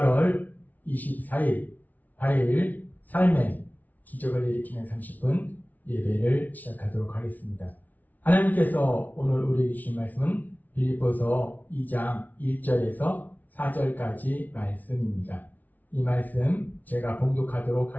24일 화요일 삶의 기적을 일으키는 30분 예배를 시작하도록 하겠습니다. 하나님께서 오늘 우리에게 주신 말씀은 빌립보서 2장 1절에서 4절까지 말씀입니다. 이 말씀 제가 봉독하도록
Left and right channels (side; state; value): right; late; 0.078 ms